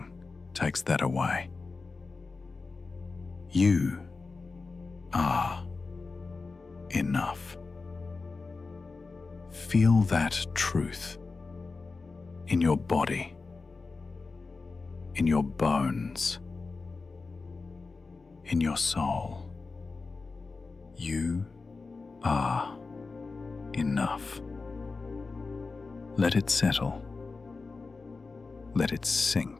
takes that away. You are enough. Feel that truth in your body, in your bones, in your soul. You are enough. Let it settle. Let it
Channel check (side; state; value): right; quieter; 4.1 dB